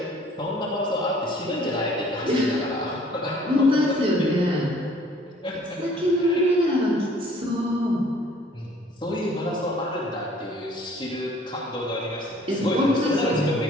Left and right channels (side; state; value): both; normal; correlation 0.55